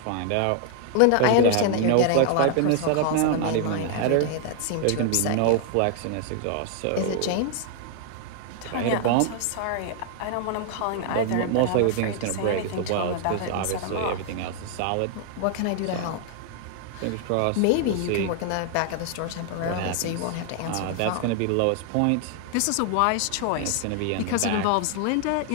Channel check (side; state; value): both; different; correlation 0.00